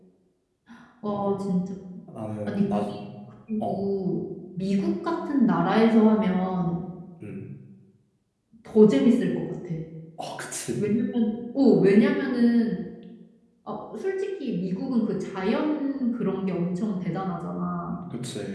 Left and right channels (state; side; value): identical; both; correlation 1.00